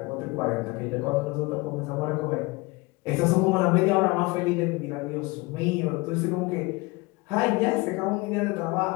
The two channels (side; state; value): right; quieter; 24.4 dB